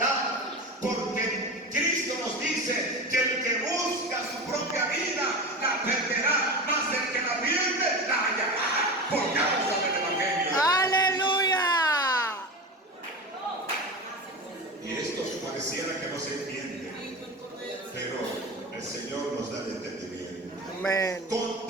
porque Cristo nos dice que el que busca su propia vida la perderá, mas el que la pierde la hallará por causa del evangelio. Aleluya. Y esto pareciera que no se entiende, pero el Señor nos da el entendimiento. Amén. Con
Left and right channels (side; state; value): both; normal; correlation 0.27